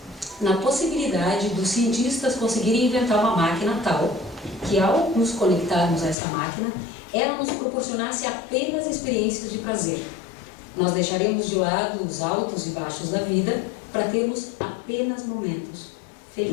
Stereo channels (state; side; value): drops out; right; at 6.2 s